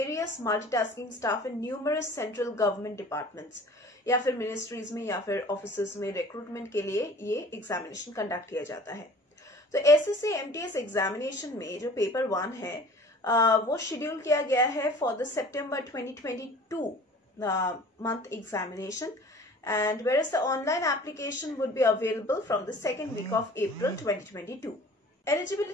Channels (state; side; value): normal; both; correlation 0.46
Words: multitasking staff in numerous central government departments, या फिर मिनिस्ट्रीज में या फिर ऑफिसेज में रिक्रूटमेंट के लिए ये एग्जामिनेशन कंडक्ट किया जाता है। तो SSC MTS एग्जामिनेशन में जो पेपर 1 है वो शेड्यूल किया गया है for the September 2022 month examination, and whereas the online application would be available from the second week of April 2022.